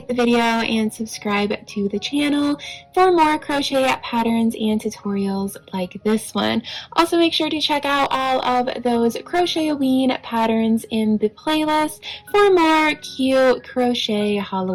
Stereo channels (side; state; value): both; identical; correlation 1.00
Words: the video and subscribe to the channel for more crochet patterns and tutorials like this one. Also, make sure to check out all of those Crochetaween patterns in the playlist for more cute crochet